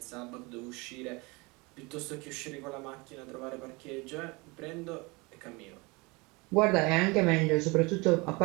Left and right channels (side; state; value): left; quieter; 26.1 dB